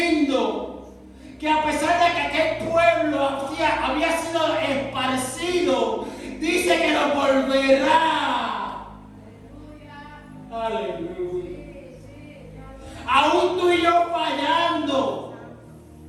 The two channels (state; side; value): identical; both; correlation 1.00